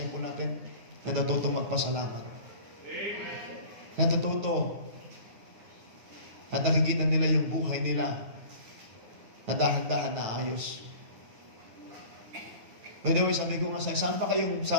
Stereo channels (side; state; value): left; late; 9.2 ms